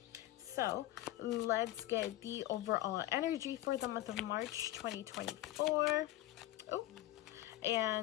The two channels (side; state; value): right; quieter; 15.5 dB